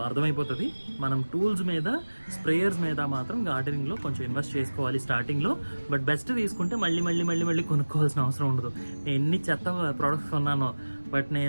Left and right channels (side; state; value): both; inverted; correlation -1.00